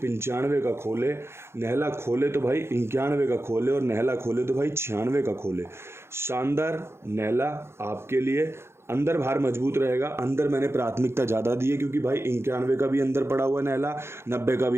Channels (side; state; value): left; late; 0.12 ms